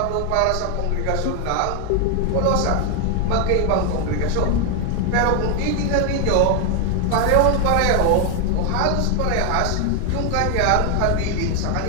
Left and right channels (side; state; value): both; different; correlation 0.01